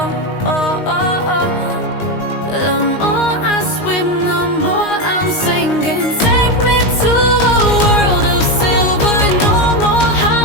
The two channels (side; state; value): right; late; 19 ms